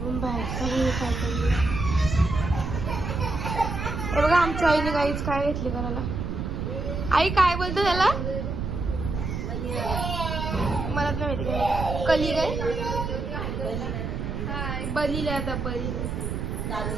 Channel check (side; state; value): right; noise; rumble, 3 dB below the sound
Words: बाहेरचा व्ह्यू काय करू. हे बघा आमच्या आईने काहीच काय घेतली करायला. आई काय बोलतो त्याला मला नाही माहिती काय. कली काय बलीला आता बली